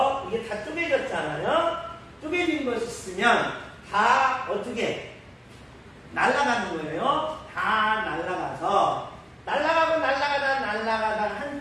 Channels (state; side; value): identical; both; correlation 1.00